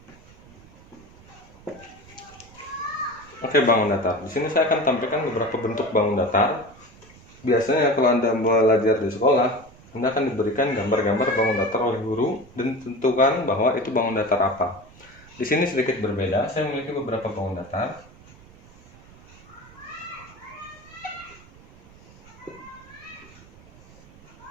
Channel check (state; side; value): noise; right; rumble, 23 dB below the sound